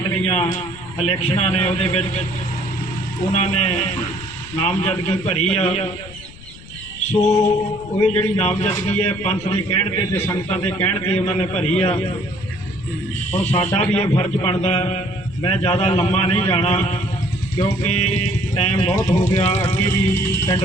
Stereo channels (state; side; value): noise; left; rumble, 18 dB below the sound